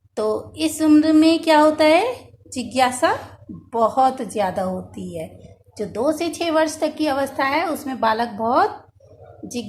तो इस उम्र में क्या होता है? जिज्ञासा बहुत ज़्यादा होती है। जो 2 से 6 वर्ष तक की अवस्था है उसमें बालक बहुत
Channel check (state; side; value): identical; both; correlation 1.00